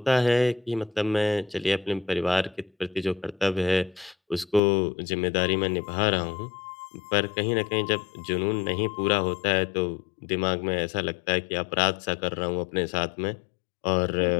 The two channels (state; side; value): drops out; right; at 4.6 s